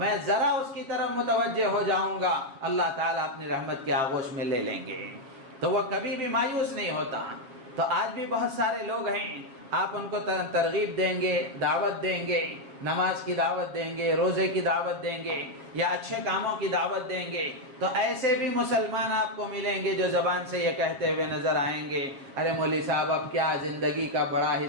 ذرا اس کی طرف متوجہ ہو جاؤں گا، اللہ تعالیٰ اپنی رحمت کے آغوش میں لے لیں گے، تو وہ کبھی بھی مایوس نہیں ہوتا۔ تو آج بھی بہت سارے لوگ ہیں، آپ ان کو ترغیب دیں گے، دعوت دیں گے، نماز کی دعوت دیں گے، روزے کی دعوت دیں گے، یا اچھے کاموں کی دعوت دیں گے، تو ایسے بھی مسلمان آپ کو ملیں گے جو زبان سے یہ کہتے ہوئے نظر آئیں گے، ارے مولوی صاحب اب کیا زندگی کا بڑا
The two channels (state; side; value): late; left; 7.3 ms